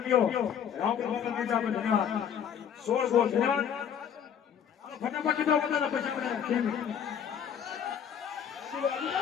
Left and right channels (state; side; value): quieter; right; 8.2 dB